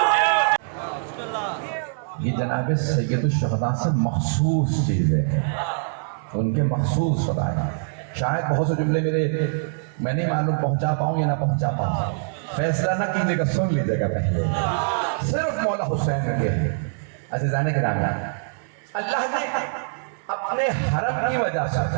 یہ جناب سید الشہداء سے مخصوص چیز ہے، ان کے مخصوص فضائل۔ شاید بہت سے جملے میں نہیں معلوم پہنچا پاؤں یا نہ پہنچا پاؤں، فیصلہ نہ کیجیے گا، سن لیجیے گا پہلے۔ صرف مولا حسین کے عزیزان گرامی، اللہ نے اپنے حرم کی وجہ سے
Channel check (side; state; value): left; silent; 63 dB below the other